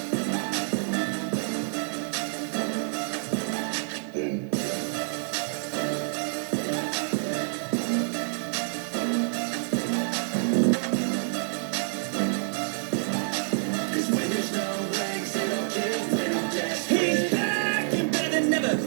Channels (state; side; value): silent; left; digital silence